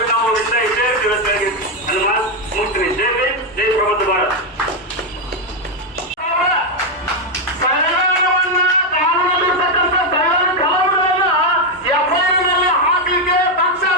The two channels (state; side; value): normal; both; correlation 0.04